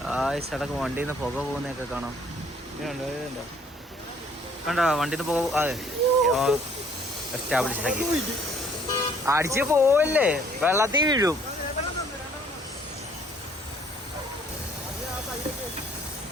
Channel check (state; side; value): normal; both; correlation 0.60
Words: സടക്ക് വണ്ടിയിൽ നിന്ന് പുക പോകുന്നതൊക്കെ കാണാം. കണ്ടോ വണ്ടിയിൽ നിന്ന് പുക? അതെ, എസ്റ്റാബ്ലിഷ് ആക്കി. അടിച്ച് പോവല്ലേ, വെള്ളത്തിൽ വീഴും.